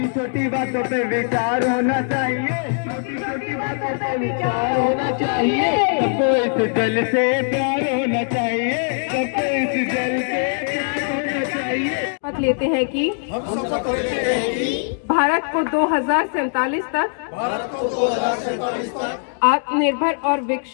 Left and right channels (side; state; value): right; silent; 65 dB below the other